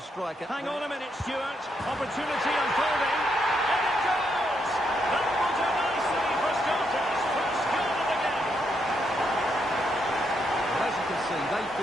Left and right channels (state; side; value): normal; both; correlation 0.78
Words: Hang on a minute, Stuart. Opportunity unfolding. And it goes! That will do nicely for starters. First goal of the game. As you can see, they